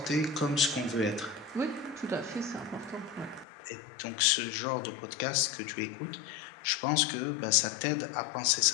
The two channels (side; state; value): right; drops out; at 3.5 s